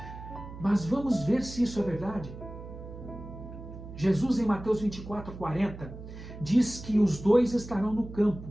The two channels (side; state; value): right; noise; hum, 13 dB below the sound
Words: Mas vamos ver se isso é verdade. Jesus, em Mateus 24:40, diz que os dois estarão no